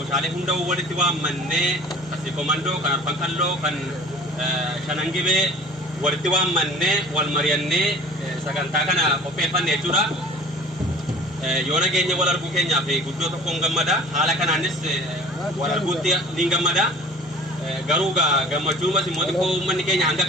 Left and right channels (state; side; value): normal; both; correlation 0.45